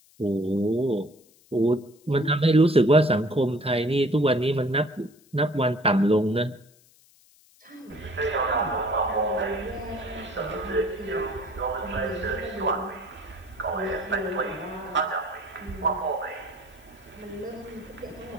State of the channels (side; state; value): left; noise; hiss, 29 dB below the sound